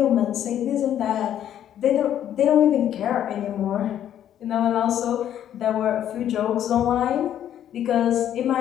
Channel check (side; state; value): right; quieter; 10.6 dB